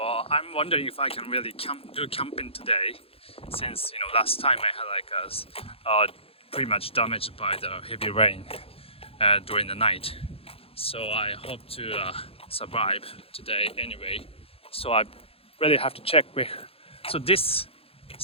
wondering if I can really do camping today, since last time I had pretty much damaged by the heavy rain during the night. So I hope to survive today anyway. So I really have to check with.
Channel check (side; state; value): right; late; 0.28 ms